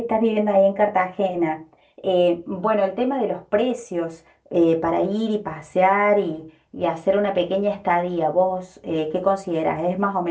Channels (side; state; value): both; identical; correlation 1.00